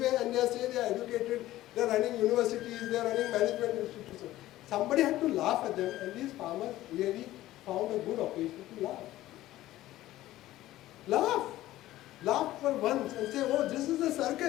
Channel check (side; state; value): right; quieter; 15.4 dB